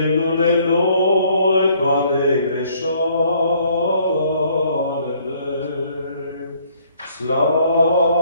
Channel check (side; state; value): both; inverted; correlation -0.63